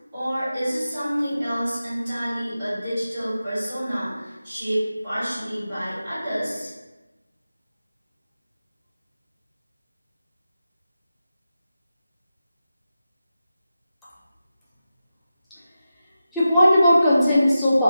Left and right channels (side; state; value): both; inverted; correlation -0.91